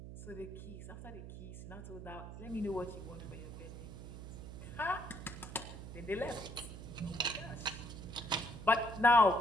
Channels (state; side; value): noise; right; hum, 10 dB below the sound